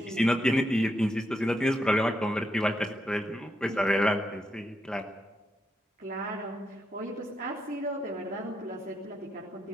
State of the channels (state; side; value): normal; both; correlation 0.82